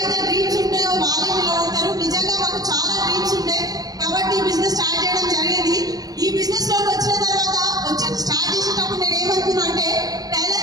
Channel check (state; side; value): late; left; 0.18 ms